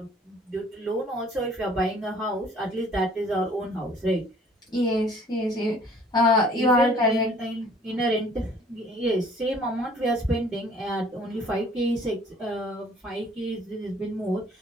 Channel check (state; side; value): normal; both; correlation 0.55